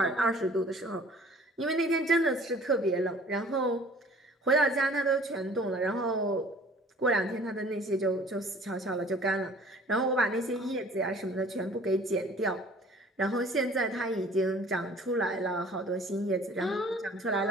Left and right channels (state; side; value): normal; both; correlation 0.51